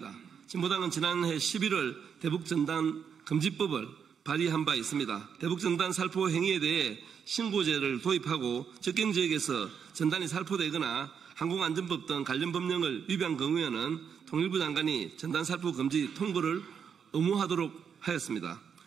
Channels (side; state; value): left; quieter; 7.1 dB